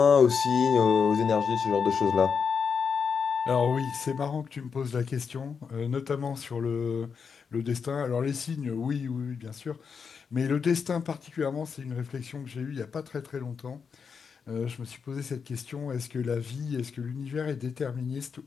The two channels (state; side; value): quieter; right; 6.0 dB